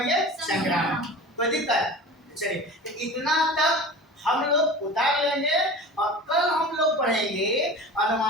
संक्रामक। कोई दिक्कत, चलिए तो इतना तक हम लोग उतार लेंगे, और कल हम लोग पढ़ेंगे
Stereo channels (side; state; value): both; normal; correlation 0.36